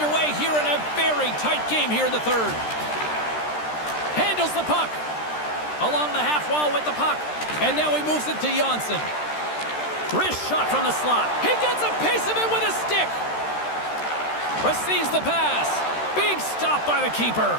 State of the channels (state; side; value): late; right; 13 ms